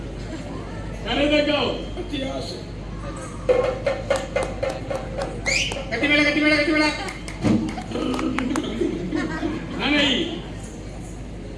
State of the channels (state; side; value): identical; both; correlation 1.00